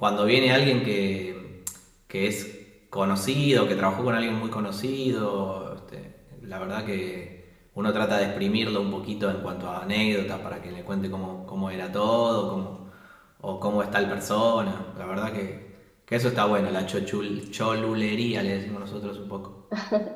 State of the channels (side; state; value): both; identical; correlation 1.00